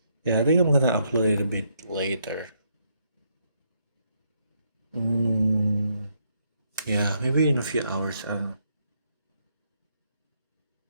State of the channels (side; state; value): both; inverted; correlation -0.75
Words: Yeah, I think I'm gonna upload it a bit later. Yeah, maybe in a few hours. I don't know.